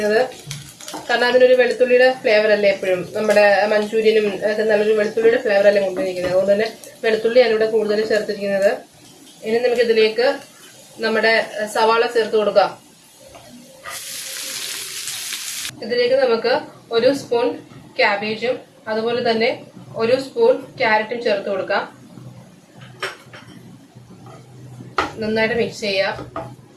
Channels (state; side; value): identical; both; correlation 1.00